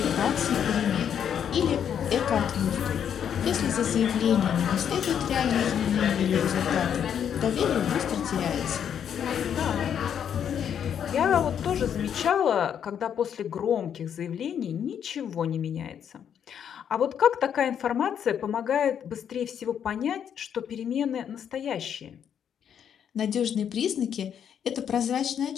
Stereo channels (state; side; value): quieter; right; 8.6 dB